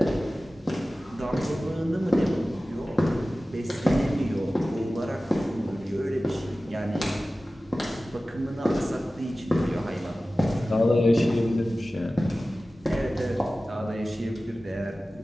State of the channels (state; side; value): normal; both; correlation 0.96